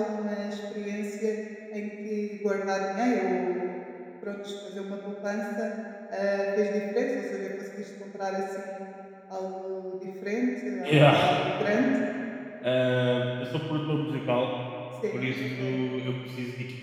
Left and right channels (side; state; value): both; identical; correlation 1.00